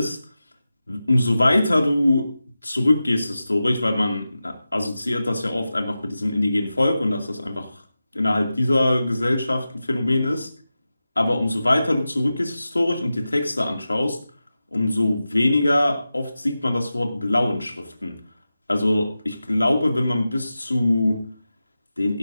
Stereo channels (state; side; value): inverted; both; correlation -0.93